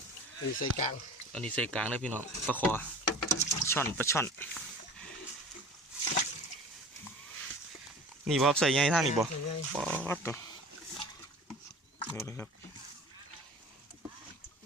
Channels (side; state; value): both; normal; correlation 0.40